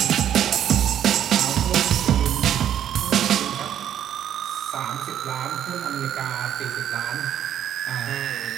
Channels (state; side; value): quieter; left; 10.3 dB